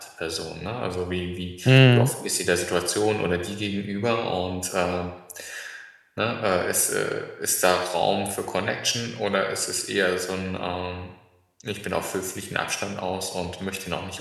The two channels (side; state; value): both; identical; correlation 1.00